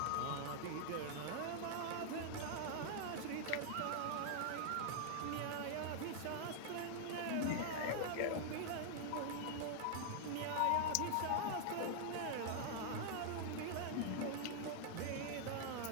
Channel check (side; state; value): both; different; correlation -0.01